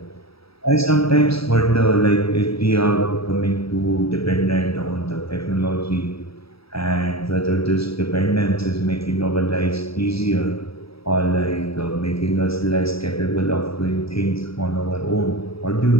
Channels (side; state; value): right; late; 0.76 ms